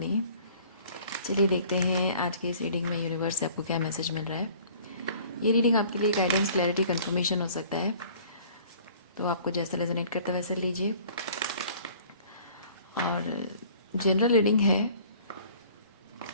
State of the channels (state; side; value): inverted; both; correlation -0.52